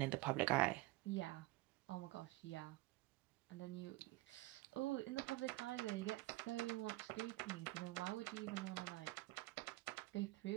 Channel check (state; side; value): quieter; left; 20.0 dB